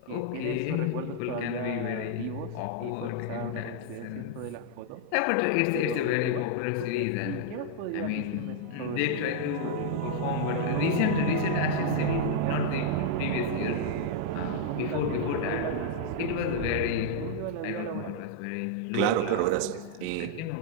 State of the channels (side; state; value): both; different; correlation -0.01